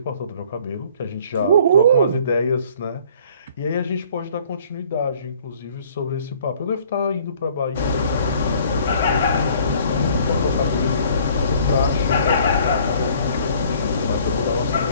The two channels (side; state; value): both; inverted; correlation -0.56